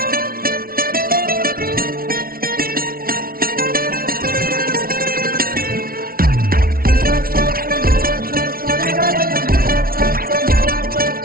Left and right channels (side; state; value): left; late; 0.43 ms